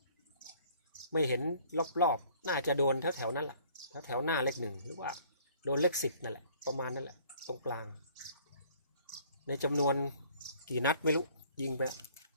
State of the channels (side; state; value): both; inverted; correlation -0.56